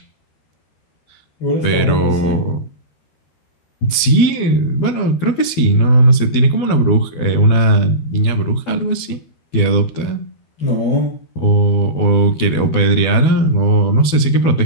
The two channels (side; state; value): right; late; 12 ms